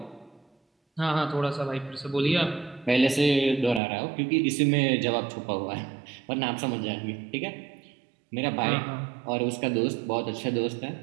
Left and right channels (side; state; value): left; drops out; at 3.8 s